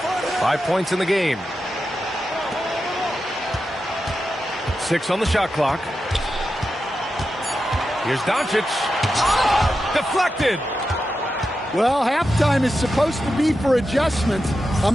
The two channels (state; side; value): normal; both; correlation 0.89